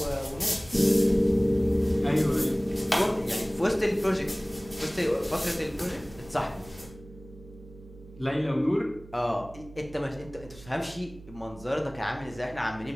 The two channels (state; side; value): noise; right; hum, 20 dB below the sound